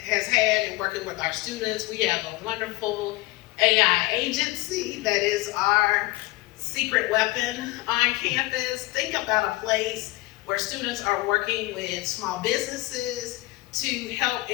had in working with our students. We have a wonderful AI agency that is our secret weapon on campus. Think about a place where students are working with small businesses to help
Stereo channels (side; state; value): right; quieter; 20.4 dB